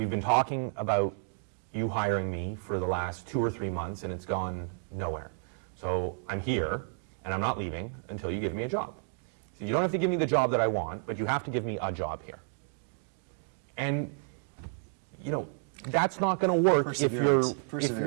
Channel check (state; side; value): silent; left; 56 dB below the other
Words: been talking about you hiring me for the last 2 or 3 months and it's gone nowhere. So I'm here and I'm not leaving until you give me a job. So you don't have to give me the job that I want, but you have to give me a job here. And, you know, that's not going to work if